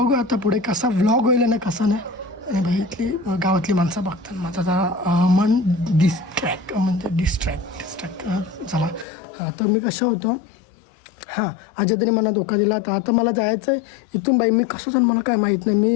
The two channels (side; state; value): right; drops out; at 9.1 s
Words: आता पुढे कसा व्लॉग होईल ना कसा नाही. आणि भाई इथली गावातली माणसं बघतात, माझं जरा मन डिस्ट्रॅक्ट झाला. तर मी कसं होतो, हां आजी तरी मला धोका दिला. तर आता मला जायचं आहे इथून. बाई मी कसं जाण मला काय माहीत नाही, मी